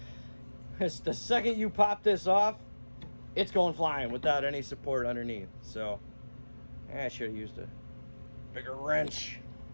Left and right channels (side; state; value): both; inverted; correlation -1.00